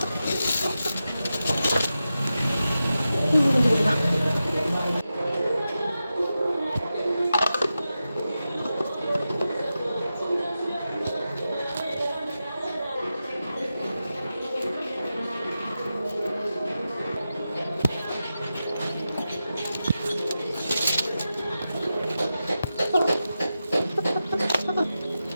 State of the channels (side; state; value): both; inverted; correlation -0.91